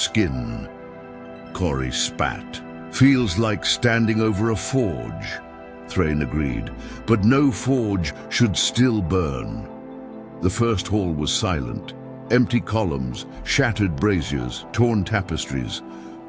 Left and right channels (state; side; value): identical; both; correlation 1.00